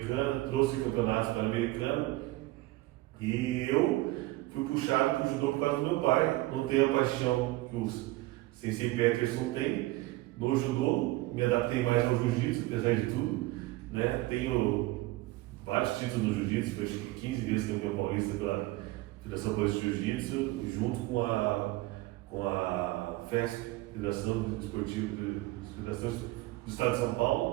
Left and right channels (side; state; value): left; quieter; 19.2 dB